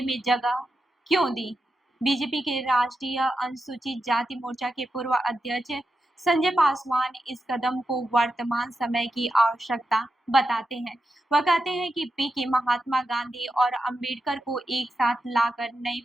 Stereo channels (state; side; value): normal; both; correlation 0.88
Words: में जगह क्यों दी? बीजेपी के राष्ट्रीय अनुसूचित जाति मोर्चा के पूर्व अध्यक्ष संजय पासवान इस कदम को वर्तमान समय की आवश्यकता बताते हैं। वह कहते हैं कि पीके महात्मा गांधी और अम्बेडकर को एक साथ लाकर नई